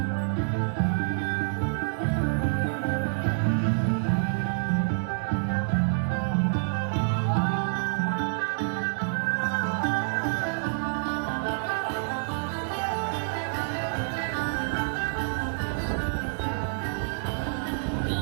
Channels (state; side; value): silent; left; digital silence